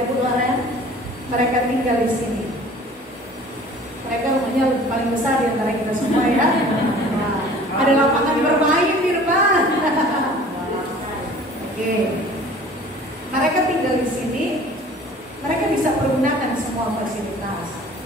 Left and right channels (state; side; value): normal; both; correlation 0.47